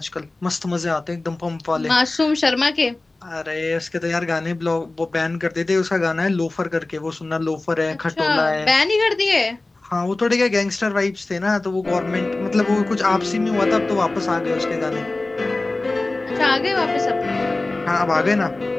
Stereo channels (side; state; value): right; quieter; 3.1 dB